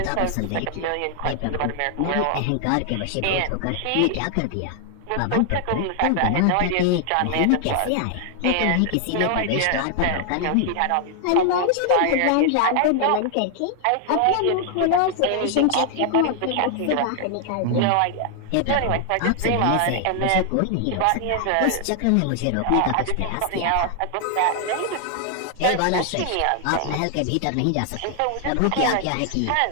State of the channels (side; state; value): both; different; correlation 0.00